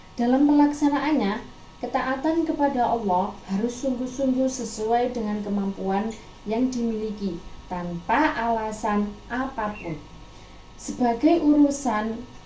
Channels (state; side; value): identical; both; correlation 1.00